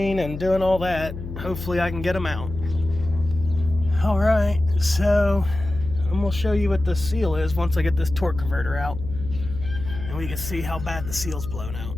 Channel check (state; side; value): noise; left; hum, 9 dB below the sound